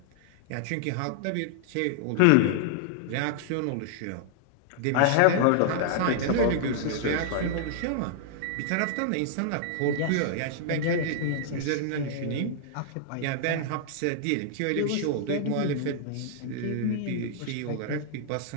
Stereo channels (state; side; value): different; both; correlation -0.01